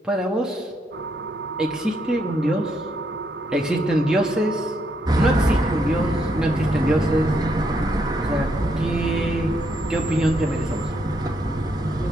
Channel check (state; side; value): normal; both; correlation 0.76